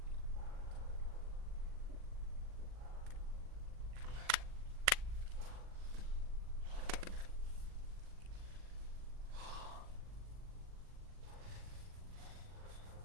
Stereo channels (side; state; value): left; late; 40 ms